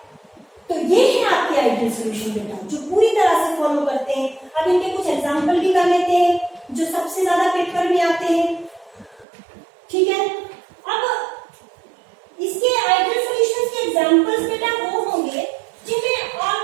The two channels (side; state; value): left; drops out; at 9.2 s